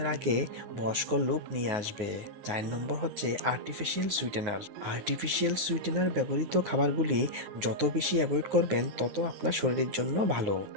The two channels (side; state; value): left; late; 9.5 ms